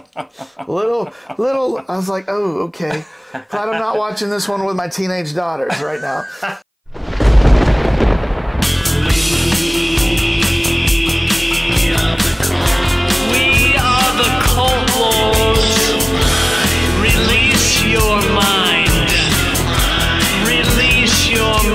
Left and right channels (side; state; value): both; identical; correlation 1.00